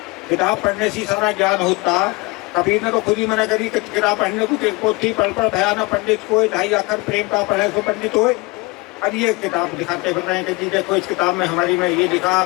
किताब पढ़ने से सारा ज्ञान होता। कबीर ने तो खुद ही मना करी किताब पढ़ने को, पोथी पढ़ पढ़ भयाना पंडित को, 2.5 अक्षर प्रेम का पढ़े सो पंडित हो। अब ये किताब दिखाते फिर रहे हैं कि जी देखो इस किताब में हमारी में ये लिखा,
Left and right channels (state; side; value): quieter; right; 25.2 dB